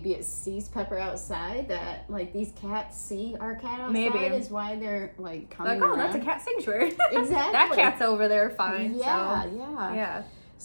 it sees Pepper outside, that like these cats see our cat outside. Maybe is why they're like coming like, oh, around. that's a cat sanctuary. Exactly. That cat's over there fine. Yeah, so. yeah.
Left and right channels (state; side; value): inverted; both; correlation -1.00